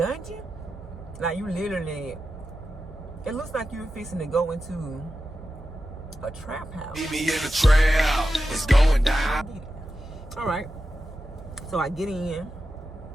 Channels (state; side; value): normal; both; correlation 0.91